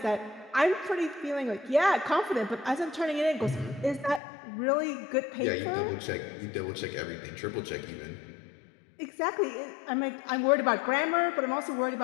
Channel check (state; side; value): drops out; right; at 4.2 s